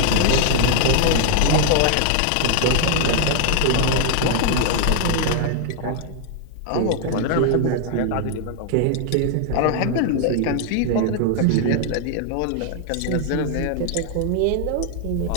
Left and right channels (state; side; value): different; both; correlation 0.00